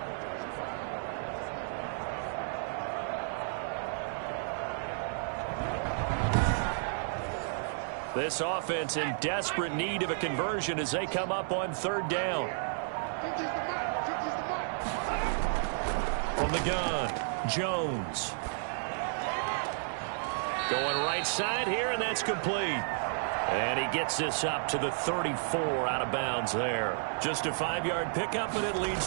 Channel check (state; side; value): silent; left; 56 dB below the other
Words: This offense in desperate need of a conversion as they come up on 3rd down. From the gun, Jones. Going right side here, and that's complete. And he gets this up to the 34 out of bounds there. Just a 5-yard pickup, but it leads